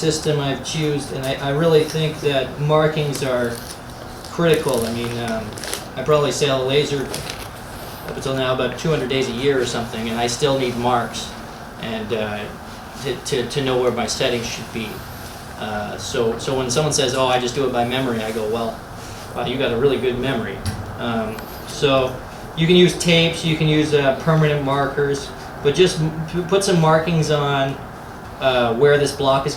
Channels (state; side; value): identical; both; correlation 1.00